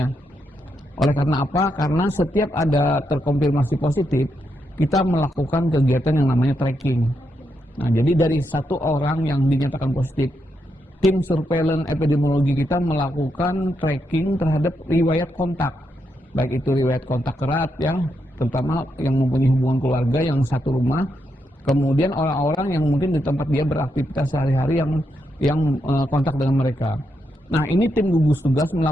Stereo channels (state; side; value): normal; both; correlation 0.82